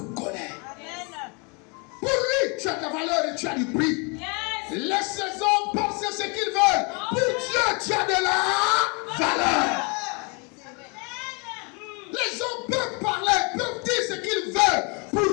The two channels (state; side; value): quieter; right; 32.7 dB